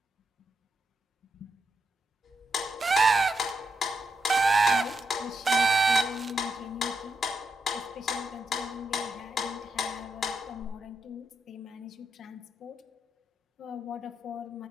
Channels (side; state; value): both; normal; correlation 0.83